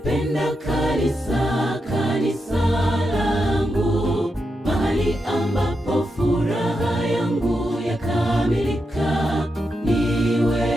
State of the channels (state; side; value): normal; both; correlation 0.86